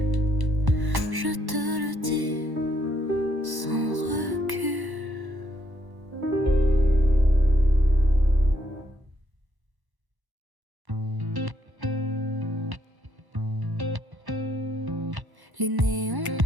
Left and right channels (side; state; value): left; late; 1.1 ms